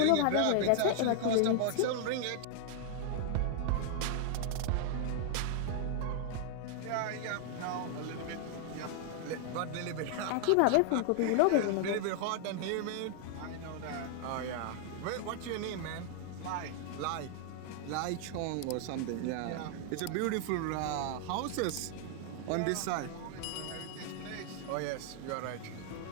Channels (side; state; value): both; different; correlation 0.00